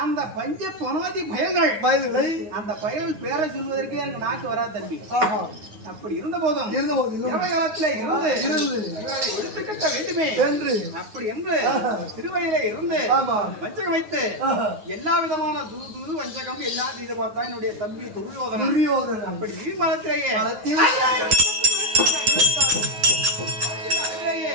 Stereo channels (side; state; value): left; late; 9.6 ms